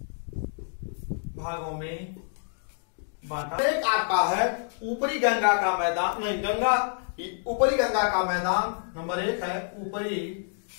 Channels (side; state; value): right; silent; digital silence